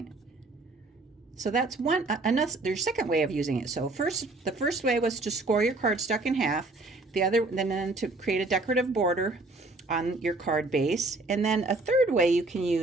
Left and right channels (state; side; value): quieter; left; 3.1 dB